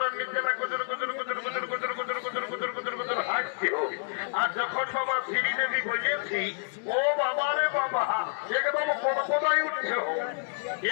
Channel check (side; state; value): right; silent; digital silence